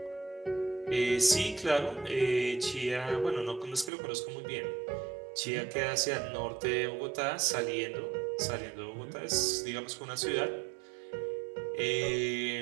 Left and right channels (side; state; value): left; drops out; at 3.9 s